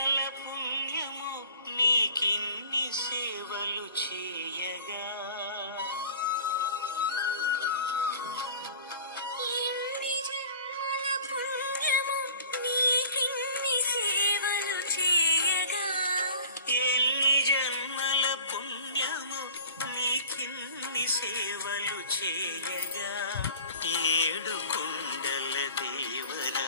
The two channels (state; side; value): inverted; both; correlation -0.45